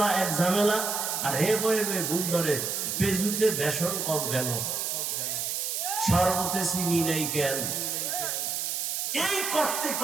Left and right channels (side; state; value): right; noise; hiss, 1 dB below the sound